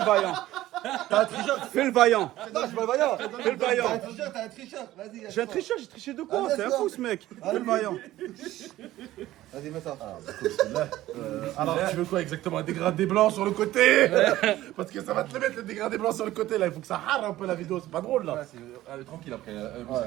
vaillant. T'as un tricheur. Fais le vaillant. Non, je suis pas le vaillant. Fais le vaillant. T'as un tricheur. Vas-y. J'ai un tricheur, j'ai triché de quoi? Ah, C'est un d'accord. fou ce mec. Fais le vaillant. Vas-y, mets ça. Alors, tu veux quoi exactement? Un dégradé blanc sur le côté. Parce que ça va te le mettre le dégradé blanc sur le côté là. Il faut que ça rare un peu la vidéo. C'est pas drôle là. Tranquille après,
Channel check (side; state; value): left; quieter; 15.2 dB